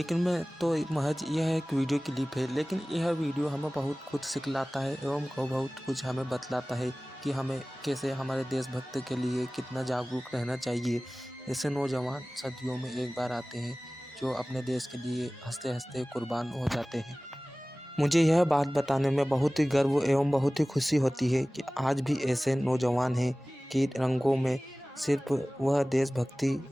में तो महज यह एक वीडियो क्लिप है, लेकिन यह वीडियो हमें बहुत कुछ सिखलाता है एवं बहुत कुछ हमें बतलाता है कि हमें कैसे हमारे देशभक्त के लिए कितना जागरूक रहना चाहिए। ऐसे नौजवान सदियों में एक बार आते हैं जो अपने देश के लिए हंसते हंसते कुर्बान हो जाते हैं। मुझे यह बात बताने में बहुत ही गर्व एवं बहुत ही खुशी होती है कि आज भी ऐसे नौजवान हैं कि रंगों में सिर्फ वह देशभक्ति,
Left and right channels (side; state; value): both; normal; correlation 0.98